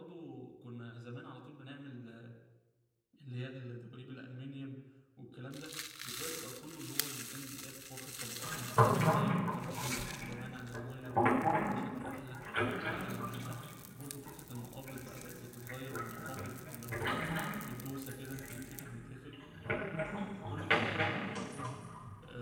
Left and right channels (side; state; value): both; identical; correlation 1.00